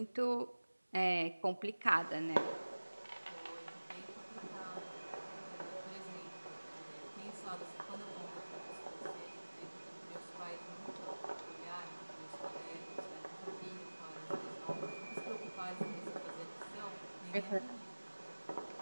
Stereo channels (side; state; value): both; inverted; correlation -1.00